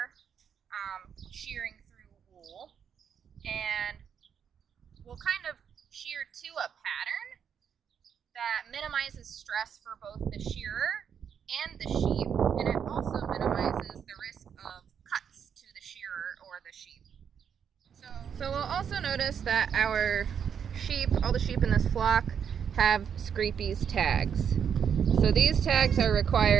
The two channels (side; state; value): left; quieter; 7.8 dB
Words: shearing through wool. And we'll kind of shear to a pattern that minimizes stress for both the shearer and the sheep, and it also minimizes the risk of cuts to the shearer or the sheep. So we'll also notice that our sheep, all the sheep in this flock, have Scrapie's tags. So these tags are